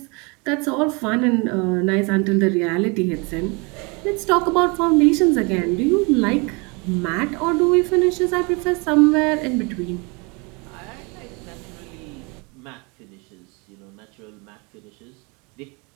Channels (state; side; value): quieter; left; 30.0 dB